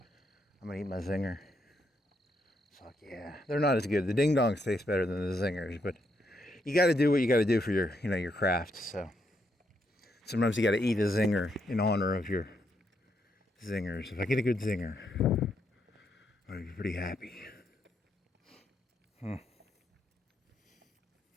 I'm gonna eat my zinger. Fuck yeah, they're not as good. The ding dongs taste better than the zingers, but you got to do what you got to do for your, your craft. So sometimes you got to eat a zinger in honor of your zingers. If I get a good zinger, I'm gonna be pretty happy.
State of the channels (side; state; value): both; normal; correlation 0.78